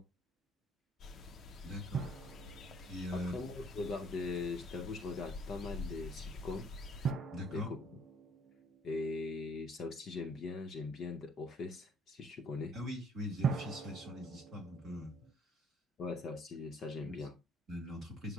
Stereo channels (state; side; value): normal; both; correlation 0.60